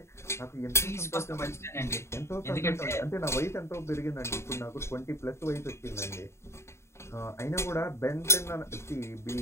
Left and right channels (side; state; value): right; late; 0.13 ms